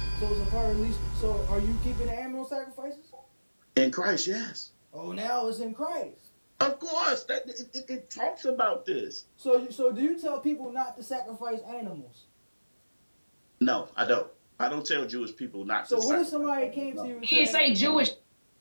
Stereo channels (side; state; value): both; inverted; correlation -1.00